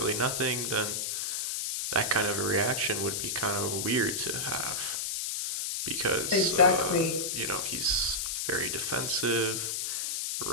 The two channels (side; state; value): left; noise; hiss, 1 dB below the sound